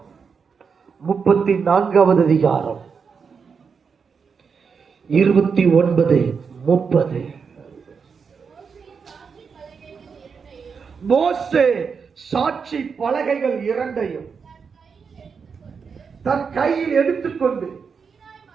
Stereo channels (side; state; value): left; quieter; 5.8 dB